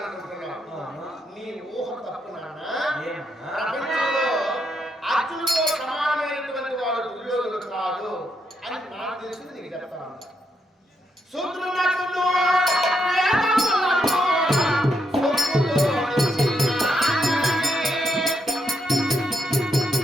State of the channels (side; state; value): both; normal; correlation 0.79